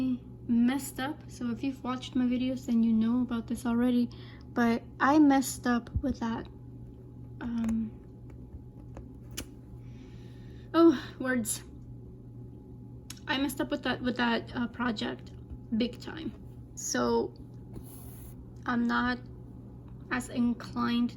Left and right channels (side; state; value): both; identical; correlation 1.00